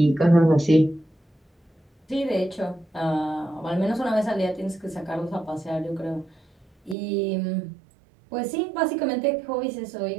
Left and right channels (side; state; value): left; drops out; at 7.0 s